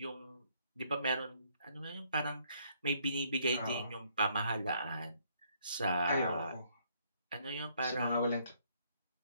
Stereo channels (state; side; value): inverted; both; correlation -0.68